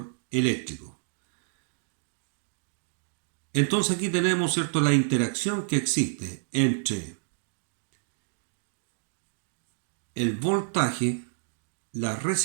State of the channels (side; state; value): left; silent; digital silence